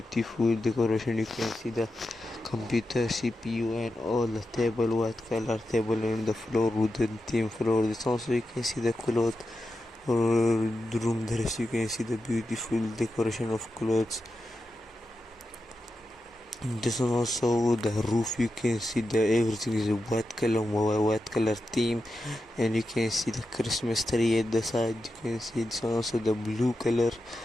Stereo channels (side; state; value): both; normal; correlation 0.89